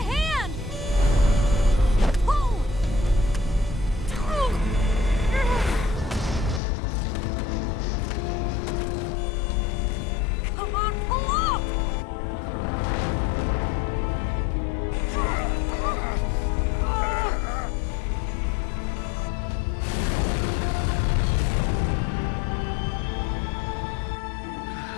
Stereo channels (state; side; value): drops out; right; at 6.6 s